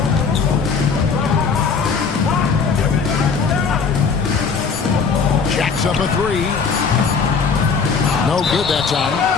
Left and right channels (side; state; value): right; quieter; 5.3 dB